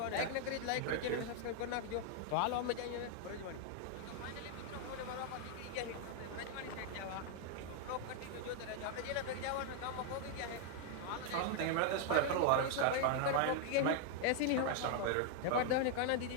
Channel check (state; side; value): different; both; correlation 0.00